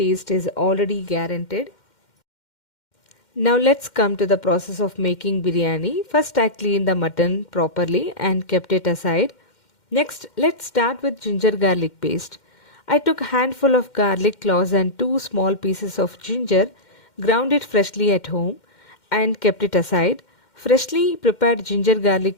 is already guaranteed. Now let's come to the process of making biryani. First I cleaned the mutton properly and kept it aside. Next let's start with ginger garlic paste. I took a handful of garlic cloves and two small pieces of ginger, ground it freshly at home and kept it aside. Freshly prepared ginger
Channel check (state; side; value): late; right; 2.1 ms